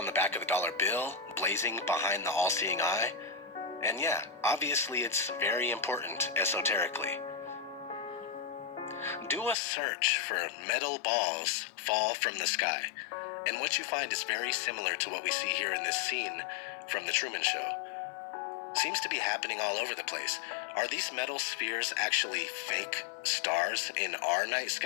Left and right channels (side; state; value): right; drops out; at 9.6 s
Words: the back of the dollar bill, blazing behind the all-seeing eye. And yeah, obviously it's very important esoterically. Do a search for metal balls fall from the sky, and what you find is very similar to what we see here in this scene from the Truman Show. Seems to be happening all over the place. Are these metal spheres actually fake stars in our night